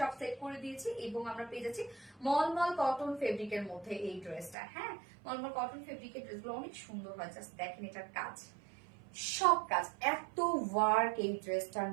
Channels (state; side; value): drops out; left; at 4.5 s